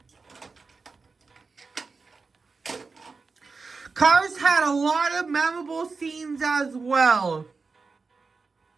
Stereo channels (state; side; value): quieter; left; 4.4 dB